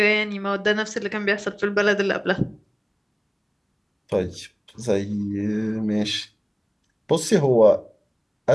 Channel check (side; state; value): both; identical; correlation 1.00